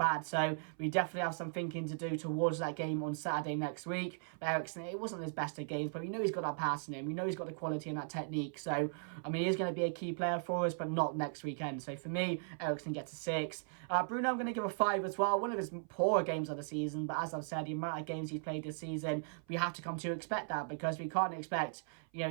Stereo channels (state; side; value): silent; left; 53 dB below the other